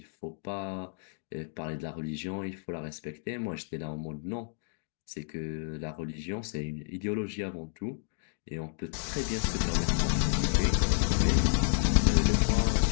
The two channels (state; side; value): silent; right; digital silence